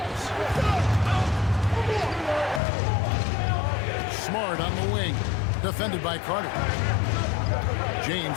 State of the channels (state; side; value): drops out; right; at 2.6 s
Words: Smart on the wing. Defended by Carter.